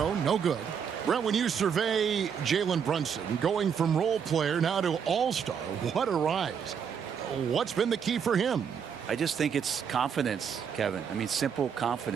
no good. Brent, when you survey Jalen Brunson, going from role player now to all-star, what a rise. What's been the key for him? I just think it's confidence, Kevin. I mean, simple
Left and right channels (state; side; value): quieter; left; 7.3 dB